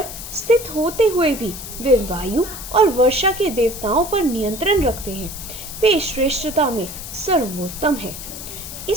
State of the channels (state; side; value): noise; left; hiss, 10 dB below the sound